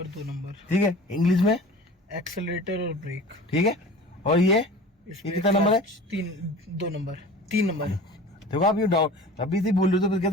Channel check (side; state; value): both; normal; correlation 0.40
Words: 2 नंबर, ठीक है, इंग्लिश में एक्सेलरेटर और ब्रेक, ठीक है। और ये कितना नंबर है? 2 नंबर 3 नंबर। देखो आप ये डाउट अभी से बोल रहे हो तो फिर